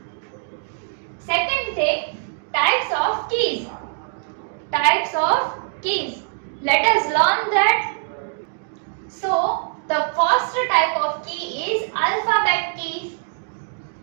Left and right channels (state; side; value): silent; left; digital silence